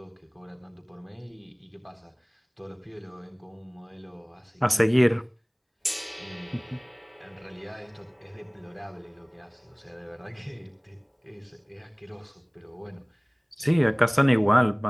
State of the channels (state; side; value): identical; both; correlation 1.00